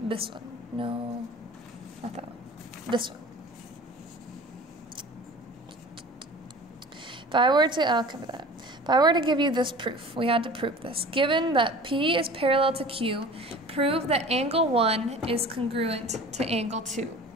one. No, not that one. This one. If I were to, I'll cover that. If I were to give you this proof, we had to prove this. Given that P is parallel to Q, prove that angle 1 is congruent to angle 2.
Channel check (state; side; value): normal; both; correlation 0.41